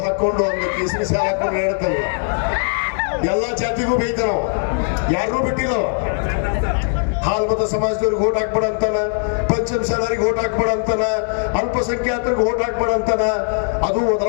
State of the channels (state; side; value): silent; right; 65 dB below the other